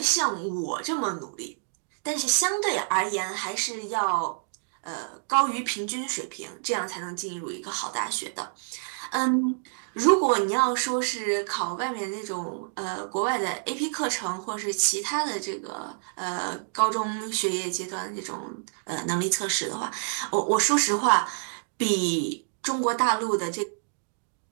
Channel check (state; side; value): silent; left; digital silence